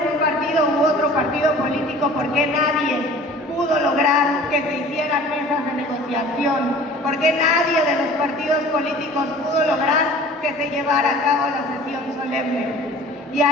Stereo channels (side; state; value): both; normal; correlation 0.45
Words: un partido u otro partido político, ¿por qué nadie pudo lograr que se hicieran mesas de negociación? ¿Por qué nadie de los partidos políticos pudo lograr que se llevara a cabo la sesión solemne? Y